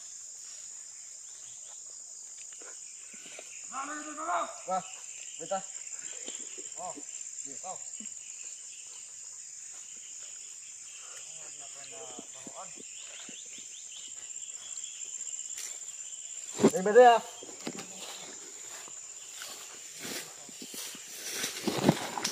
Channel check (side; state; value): both; identical; correlation 1.00